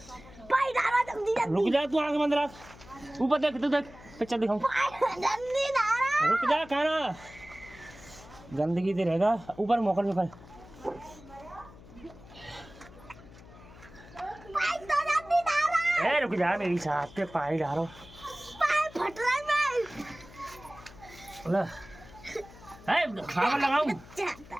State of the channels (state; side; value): noise; left; hum, 20 dB below the sound